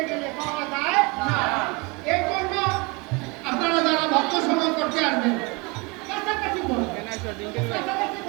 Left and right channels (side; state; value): left; quieter; 28.1 dB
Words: গেলে পাওয়া যায় না। এই জন্য আপনারা যারা ভক্ত সঙ্গ করতে আসবেন কাছাকাছি করবেন, কাছাকাছি